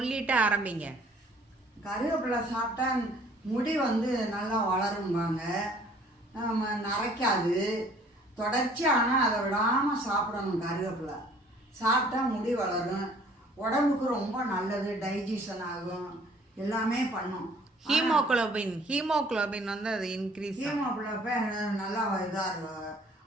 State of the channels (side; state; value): both; normal; correlation 0.56